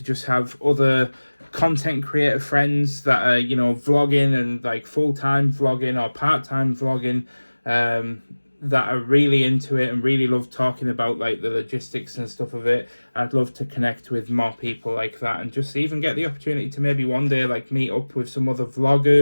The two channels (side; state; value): both; inverted; correlation -1.00